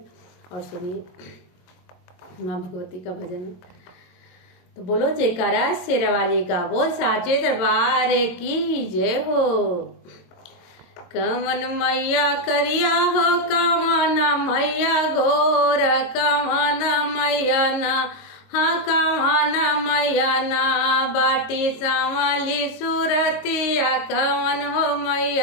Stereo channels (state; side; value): late; right; 22 ms